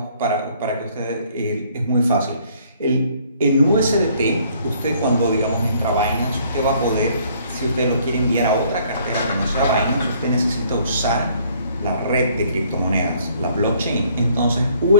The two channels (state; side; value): inverted; both; correlation -0.62